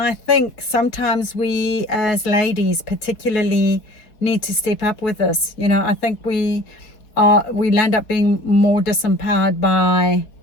think sometimes we as ladies particularly need to step up with this. You know, I think we land up being more disempowered by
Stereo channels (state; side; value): late; right; 4.1 ms